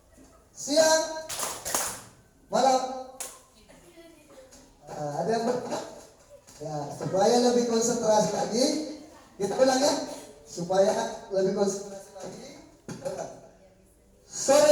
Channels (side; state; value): both; identical; correlation 1.00